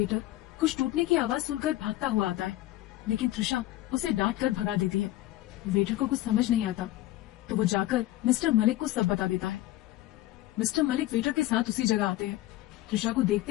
कुछ टूटने की आवाज सुनकर भागता हुआ आता है, लेकिन त्रिशा उसे डांट कर भगा देती है। वेटर को कुछ समझ नहीं आता तो वो जाकर मिस्टर मलिक को सब बता देता है। मिस्टर मलिक वेटर के साथ उसी जगह आते हैं। त्रिशा को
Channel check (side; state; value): right; quieter; 16.0 dB